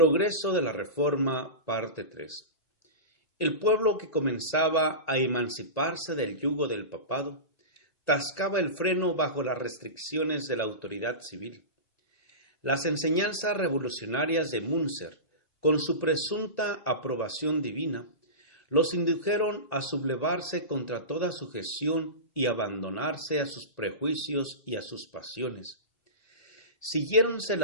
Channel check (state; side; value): late; right; 1.9 ms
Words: de la Reforma, parte 3. El pueblo que comenzaba a emanciparse del yugo del papado, tascaba el freno bajo las restricciones de la autoridad civil. Las enseñanzas revolucionarias de Münzer, con su presunta aprobación divina, los indujeron a sublevarse contra toda sujeción y abandonarse a sus prejuicios y a sus pasiones. Siguiéronse